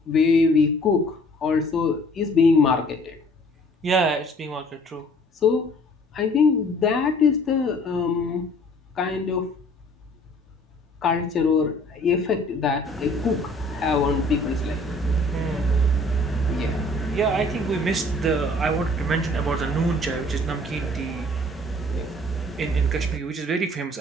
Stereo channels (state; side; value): normal; both; correlation 0.55